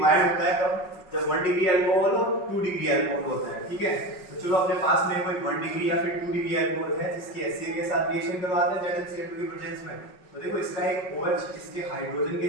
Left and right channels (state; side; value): late; right; 5.4 ms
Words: होता है कब, जब 1 डिग्री अल्कोहल और 2 डिग्री अल्कोहल होता है, ठीक है। तो चलो अपने पास में कोई 1 डिग्री या फिर 2 डिग्री अल्कोहल है जिसकी HCl के साथ रिएक्शन करवाते हैं ZnCl2 की प्रेजेंस में। तो देखो इसका एक OH इसके हाइड्रोजन के